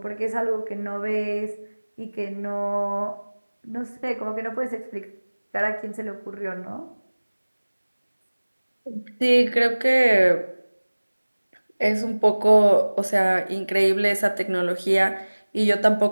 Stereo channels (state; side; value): inverted; both; correlation -1.00